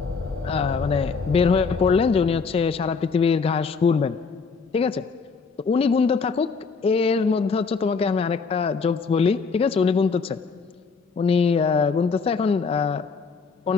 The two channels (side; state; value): right; quieter; 5.0 dB